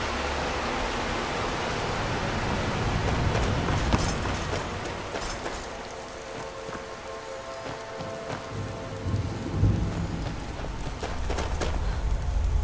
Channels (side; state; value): both; identical; correlation 1.00